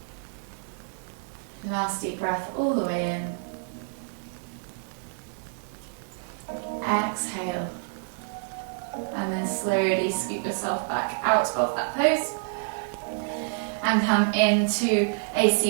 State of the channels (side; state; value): left; silent; digital silence